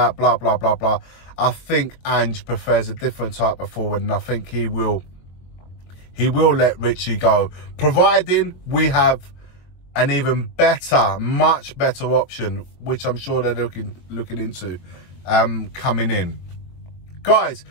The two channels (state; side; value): late; right; 23 ms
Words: blah, blah, blah, blah, I think Ange prefers a different type of forward, and I think he will let Richie go, providing we have an even better, much better option, which I'm sure they're looking into coming in. Guys,